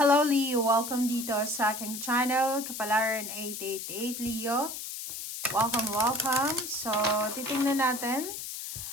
Leo, welcome dito sa aking channel, Kapalaran 888 Leo. Welcome. So, titingnan natin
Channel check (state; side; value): noise; left; hiss, 7 dB below the sound